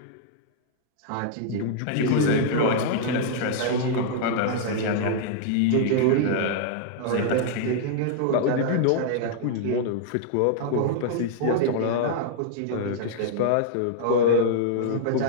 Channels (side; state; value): both; different; correlation -0.01